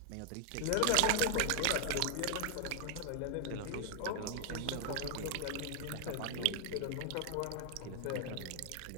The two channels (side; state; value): both; different; correlation 0.00